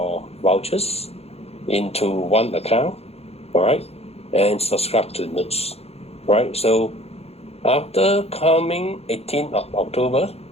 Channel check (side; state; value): right; late; 0.30 ms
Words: vouchers into one account, all right, and subscribe to notes, right? So after coming 18th of October,